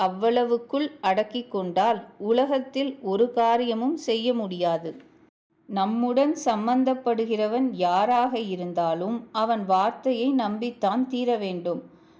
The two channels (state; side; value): identical; both; correlation 1.00